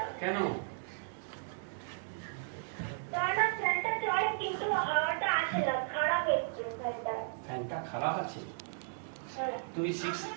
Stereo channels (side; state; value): left; silent; digital silence